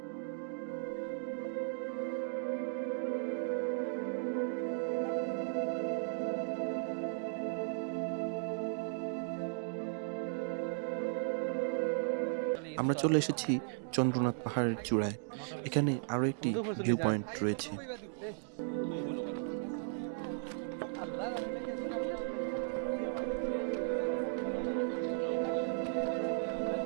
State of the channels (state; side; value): silent; left; digital silence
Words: আমরা চলে এসেছি চন্দ্রনাথ পাহাড়ের চূড়ায়। এখানে আরো একটি ভিউ পয়েন্ট রয়েছে।